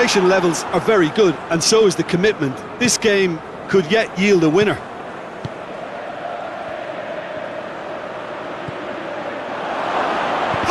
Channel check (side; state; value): both; identical; correlation 1.00